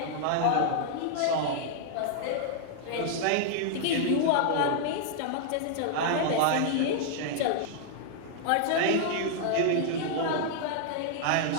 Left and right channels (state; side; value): different; both; correlation -0.01